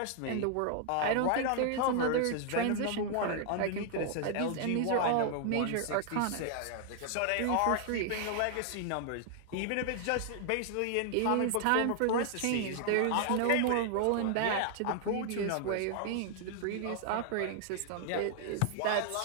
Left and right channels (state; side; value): different; both; correlation 0.00